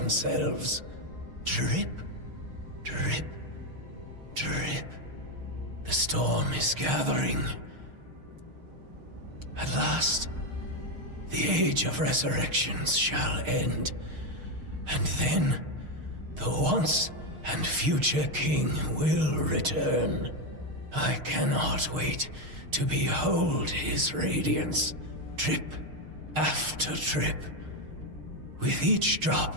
Drip, drip, drip. The storm is gathering. At last, the age of resurrections shall end. And then, the once and future king will return. I cannot wait to behold his radiance, drip after drip. With each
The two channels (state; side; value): late; left; 6.5 ms